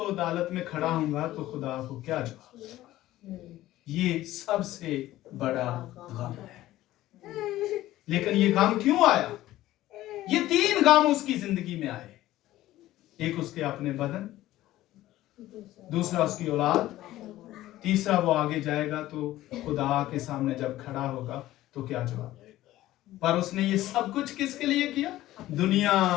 عدالت میں کھڑا ہوں گا تو خدا کو کیا جواب۔ یہ سب سے بڑا غم ہے۔ لیکن یہ غم کیوں آیا؟ یہ 3 غم اس کی زندگی میں آئے۔ ایک اس کے اپنے بدن، دوسرا اس کی اولاد، تیسرا وہ آگے جائے گا تو خدا کے سامنے جب کھڑا ہوگا تو کیا جواب دے گا۔ پر اس نے یہ سب کچھ کس کے لیے کیا؟ دنیا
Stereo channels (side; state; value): right; quieter; 15.3 dB